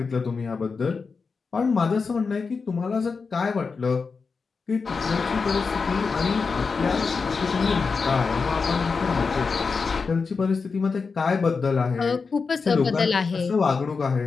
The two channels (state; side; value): quieter; right; 4.8 dB